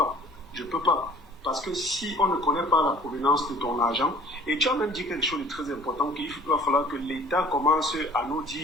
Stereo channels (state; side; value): normal; both; correlation 0.51